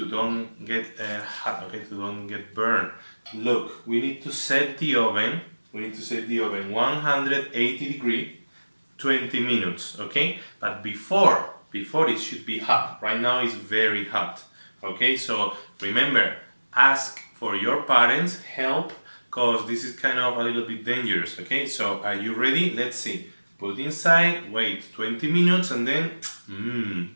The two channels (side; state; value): both; inverted; correlation -1.00